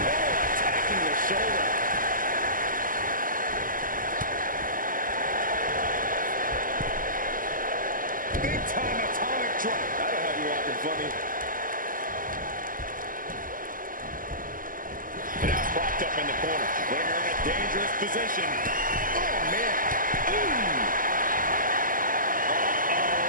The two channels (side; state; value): left; late; 0.40 ms